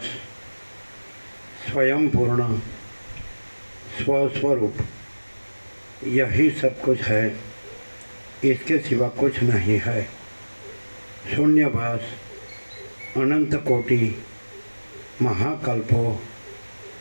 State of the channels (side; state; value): both; inverted; correlation -1.00